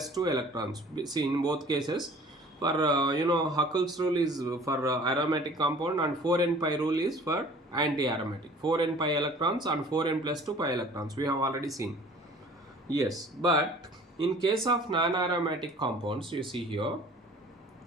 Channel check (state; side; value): normal; both; correlation 0.49